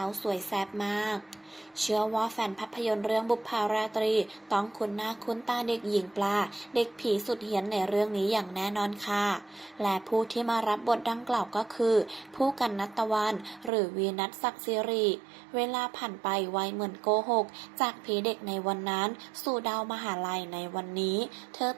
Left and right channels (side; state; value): left; drops out; at 13.7 s